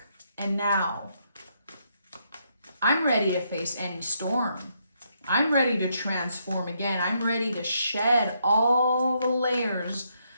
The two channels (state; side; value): inverted; both; correlation -0.76